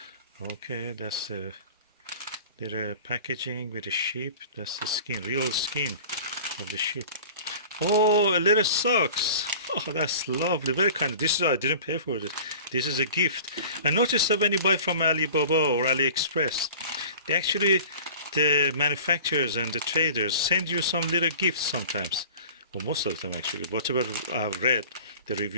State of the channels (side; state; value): both; inverted; correlation -0.42